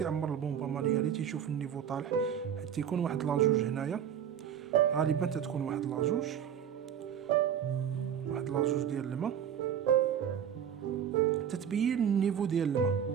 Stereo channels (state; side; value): quieter; left; 8.8 dB